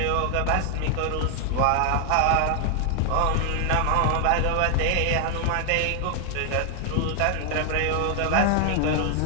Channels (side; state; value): both; different; correlation 0.00